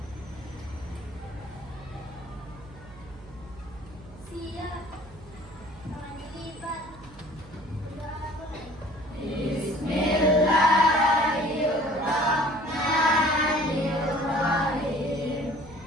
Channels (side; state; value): right; noise; hum, 20 dB below the sound